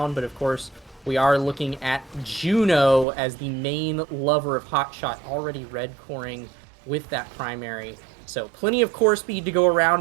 but of course we are looking at Juno as the main lover of hotshot, already red coring with that primary. So plenty of core speed to go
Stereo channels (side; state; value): left; drops out; at 3.1 s